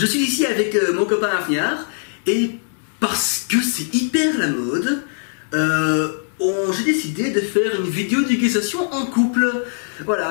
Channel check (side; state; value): right; silent; digital silence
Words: suis ici avec mon copain Afniar, et parce que c'est hyper la mode, j'ai décidé de faire une vidéo d'éducation en couple.